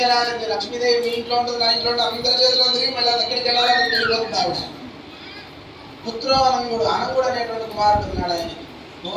లక్ష్మీదేవి మీ ఇంట్లో ఉంటుంది, నా ఇంట్లో ఉంటుంది, అందరి చేతిలో తిరిగి మళ్ళీ అది ఎక్కడికి వెళ్ళాలని తెలియబోతుంది ఆవిడ. పుత్రోవనంగుడు, అనంగుడు అనేటువంటి కుమారుడు ఉన్నాడు. ఆయన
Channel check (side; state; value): both; identical; correlation 1.00